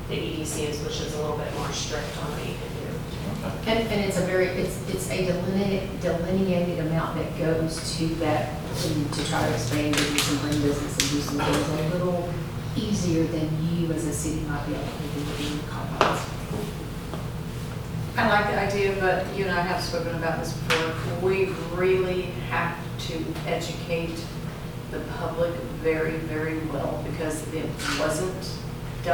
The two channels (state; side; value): identical; both; correlation 1.00